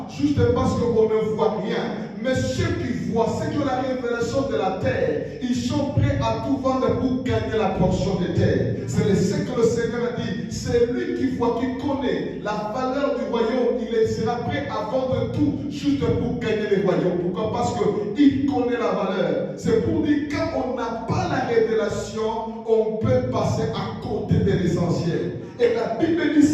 juste parce qu'on ne voit rien. Mais ceux qui voient, ceux qui ont la révélation de la terre, ils sont prêts à tout vendre pour gagner la portion de terre. C'est ce que le Seigneur a dit. C'est lui qui voit, qui connaît la valeur du royaume. Il sera prêt à vendre tout juste pour gagner le royaume. Pourquoi? Parce qu'il connaît la valeur. C'est pour dire quand on n'a pas la révélation, on peut passer à côté de l'essentiel. Et la Bible dit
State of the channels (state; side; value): identical; both; correlation 1.00